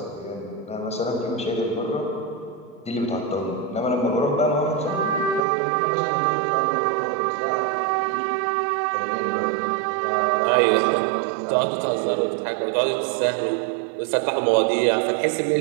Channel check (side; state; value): left; drops out; at 5.4 s